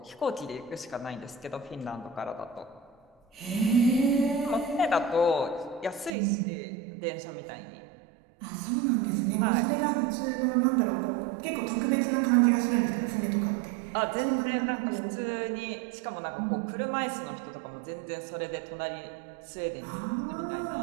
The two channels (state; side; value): drops out; left; at 6.1 s